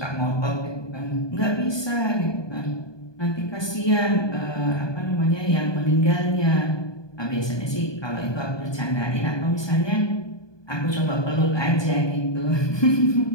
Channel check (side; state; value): right; late; 1.2 ms